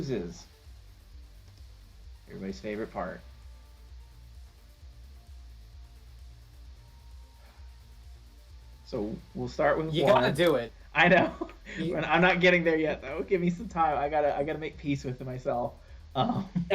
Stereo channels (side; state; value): both; identical; correlation 1.00